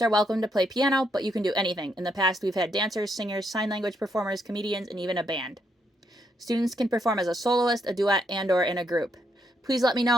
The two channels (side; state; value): both; normal; correlation 0.76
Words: are welcome to play piano, but you can do anything. In the past, we've had dancers, singers, sign language performers, comedians, and even a band. Students can perform as a soloist, a duet, and/or in a group. Please let me